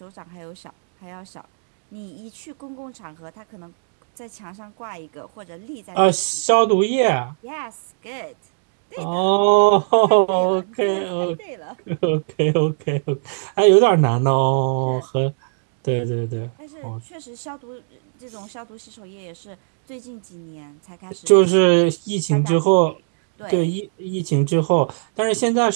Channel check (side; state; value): left; silent; digital silence